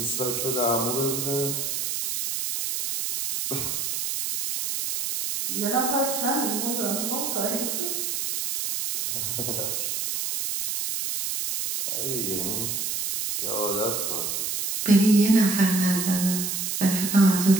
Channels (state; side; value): noise; right; hiss, 2 dB below the sound